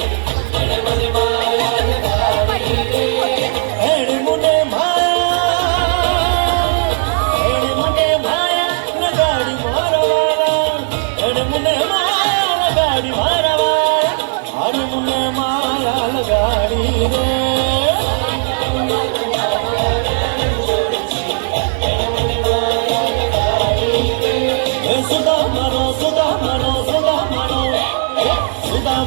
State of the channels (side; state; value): left; silent; digital silence